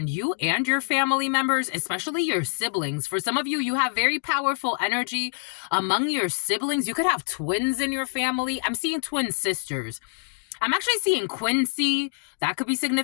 you and your family members, especially your siblings. For some of you, you have very powerful energy among your siblings. You could have twins in your family. I'm seeing twin sisters. I'm actually seeing Quincy. That could be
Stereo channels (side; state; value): right; silent; digital silence